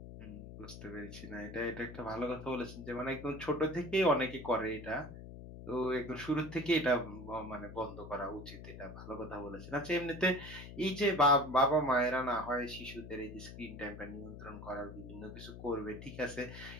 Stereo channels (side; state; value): left; noise; hum, 12 dB below the sound